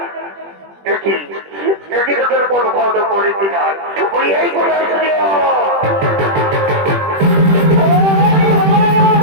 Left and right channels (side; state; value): left; late; 21 ms